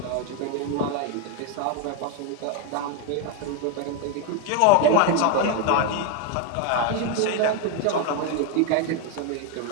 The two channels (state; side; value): different; both; correlation 0.01